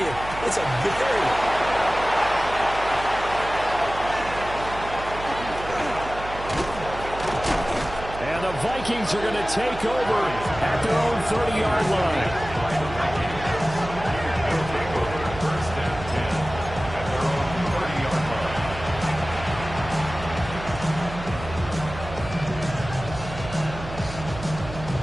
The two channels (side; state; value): right; noise; hum, 11 dB below the sound